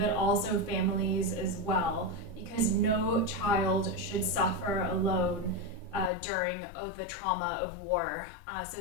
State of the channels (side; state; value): right; drops out; at 6.1 s